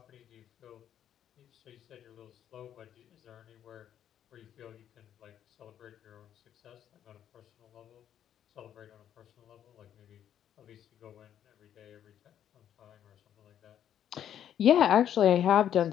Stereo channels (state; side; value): quieter; right; 10.1 dB